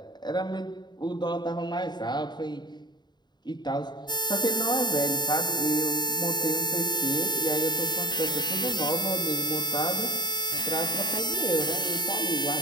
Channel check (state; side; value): late; right; 0.21 ms